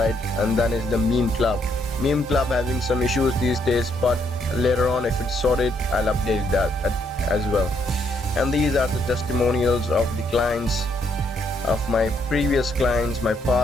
and then is the Meme Club. Meme Club having some issues these days, but later on if it's sorted, I'll update that as well. And these are the testimonials of the clients, of my previous clients, my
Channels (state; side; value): normal; both; correlation 0.73